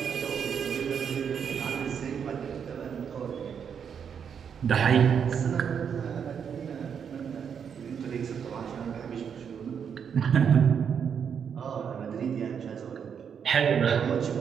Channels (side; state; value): left; quieter; 7.4 dB